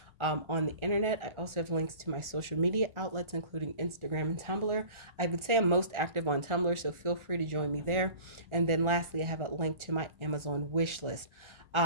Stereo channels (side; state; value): left; late; 1.4 ms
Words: on the internet. I also have links to my social media outlets, including Instagram and Tumblr. I would say I'm most active on Tumblr, so feel free to join me there. And then lastly, I have a link to my Amazon wish list.